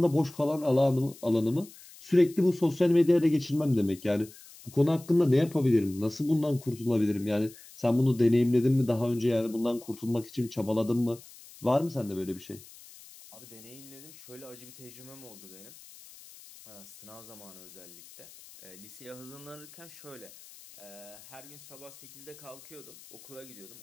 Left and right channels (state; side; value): noise; left; hiss, 20 dB below the sound